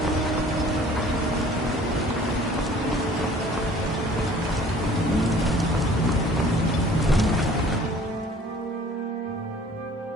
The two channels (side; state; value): both; normal; correlation 0.52